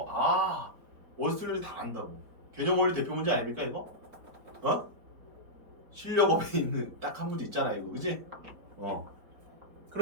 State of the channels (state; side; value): late; left; 4.5 ms